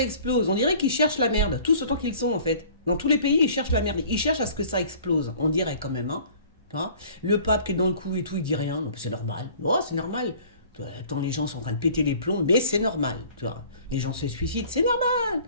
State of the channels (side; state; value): both; inverted; correlation -0.50